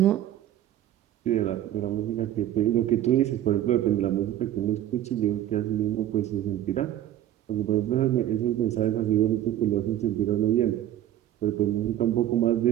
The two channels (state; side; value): quieter; left; 12.3 dB